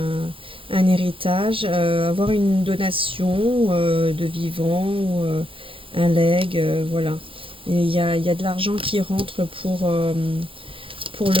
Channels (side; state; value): left; late; 0.26 ms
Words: un héritage, avoir une donation de vivant ou un legs, voilà. Et il y a de l'argent qui rentre pour